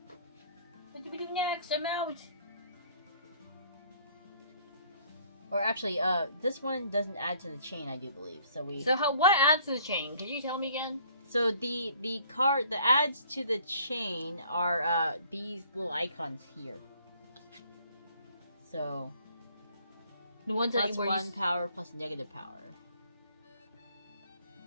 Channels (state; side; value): inverted; both; correlation -0.58